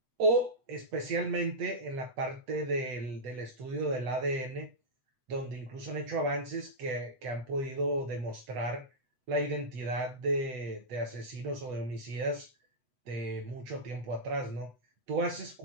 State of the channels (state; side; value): late; left; 8.0 ms